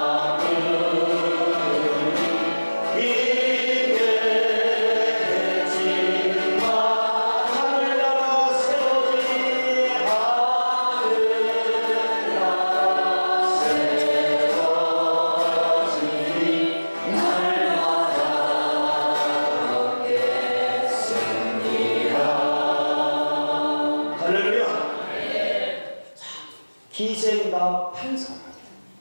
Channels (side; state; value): both; inverted; correlation -1.00